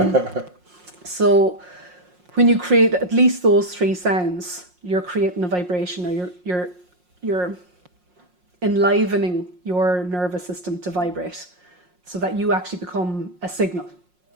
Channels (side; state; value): left; late; 5.6 ms